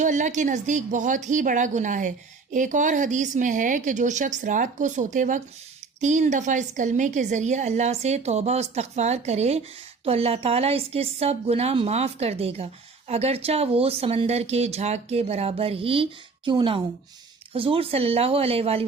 اللہ کے نزدیک بہت ہی بڑا گناہ ہے۔ ایک اور حدیث میں ہے کہ جو شخص رات کو سوتے وقت 3 دفعہ اس کلمے کے ذریعے اللہ سے توبہ و استغفار کرے تو اللہ تعالیٰ اس کے سب گناہ معاف کر دے گا، اگرچہ وہ سمندر کے جھاگ کے برابر ہی کیوں نہ ہوں۔ حضور صلی اللہ علیہ وآلہ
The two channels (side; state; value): left; quieter; 4.5 dB